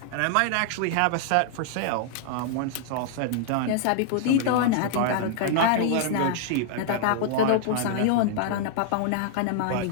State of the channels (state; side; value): different; both; correlation 0.00